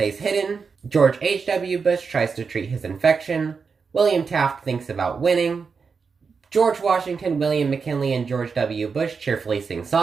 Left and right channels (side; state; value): left; quieter; 5.3 dB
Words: hidden. George H.W. Bush tries to treat his infection. William Taft thinks about winning. George Washington, William McKinley, and George W. Bush cheerfully sing